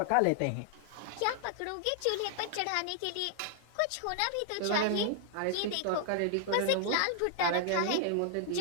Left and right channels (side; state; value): both; different; correlation -0.01